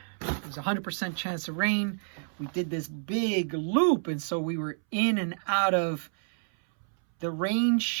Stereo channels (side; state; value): left; silent; 59 dB below the other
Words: There was a 100% chance of rain. We did this big loop, and so we were in and out of the rain